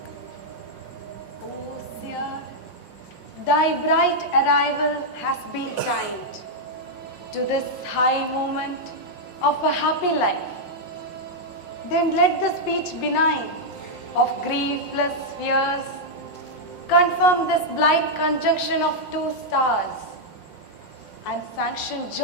O seer, thy bright arrival has been timed to this high moment of a happy life. Then let the speech benign of griefless fears confirm this blind conjunction of two stars and sanction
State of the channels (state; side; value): late; right; 5.6 ms